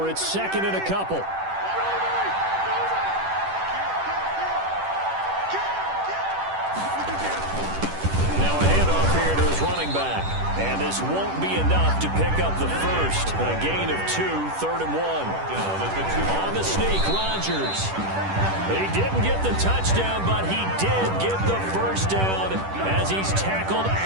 it's 2nd and a couple. Back. And this won't be enough to pick up the first. A gain of 2, 3rd and 1. On the sneak, Rodgers. He didn't get the touchdown, but he did get the first down as he's tackled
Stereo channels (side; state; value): left; late; 10 ms